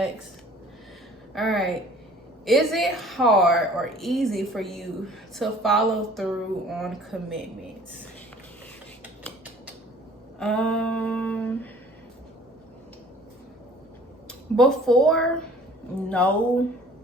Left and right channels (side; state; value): both; normal; correlation 0.51